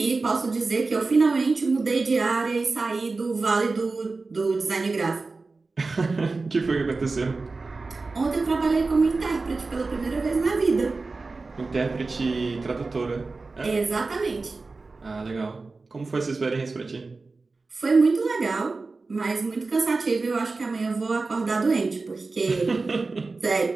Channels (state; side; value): quieter; left; 3.8 dB